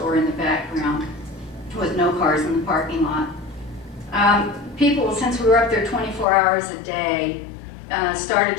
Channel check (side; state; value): right; drops out; at 6.2 s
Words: in the background with no cars in the parking lot. People, since we were up there 24 hours a day, started